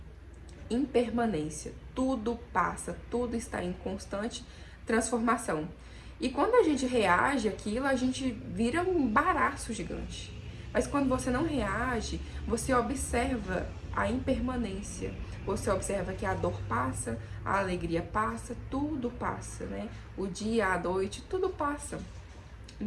impermanência. Tudo passa, tudo está em constante transformação. E quando a gente reage àquilo, a gente vira um baraço gigante. Mas quando você não reage, você observa a impermanência. Você observa que a dor passa, a alegria passa, tudo passa, né? O dia, a noite, tudo passa.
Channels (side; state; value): both; identical; correlation 1.00